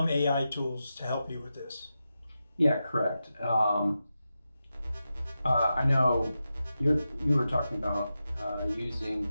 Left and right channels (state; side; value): inverted; both; correlation -0.90